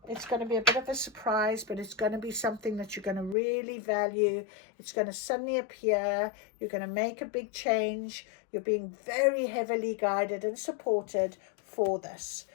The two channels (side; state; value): right; drops out; at 3.4 s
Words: It's going to be a bit of a surprise, but it's going to be something that you're going to really value. It's going to suddenly appear. You're going to make a big change. You're being very heavily guided and supported for this.